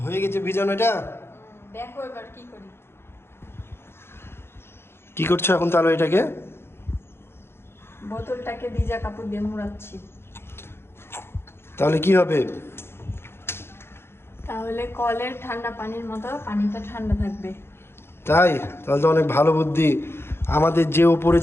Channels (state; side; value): late; right; 0.12 ms